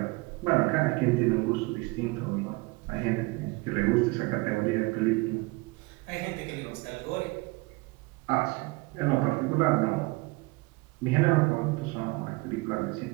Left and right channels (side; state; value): left; quieter; 24.8 dB